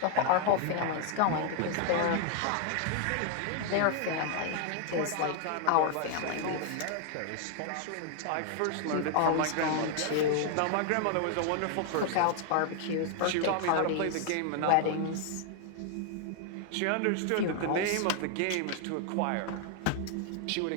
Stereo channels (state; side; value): different; both; correlation 0.00